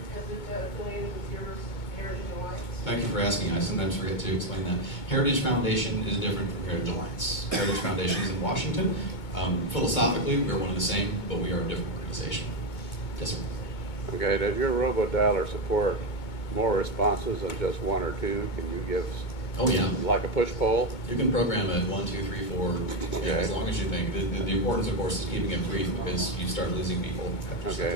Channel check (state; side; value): late; right; 2.2 ms